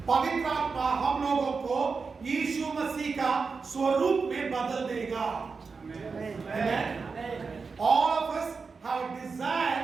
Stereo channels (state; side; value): quieter; left; 4.8 dB